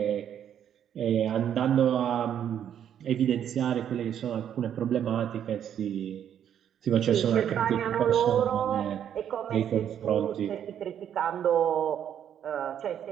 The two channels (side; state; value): left; quieter; 9.5 dB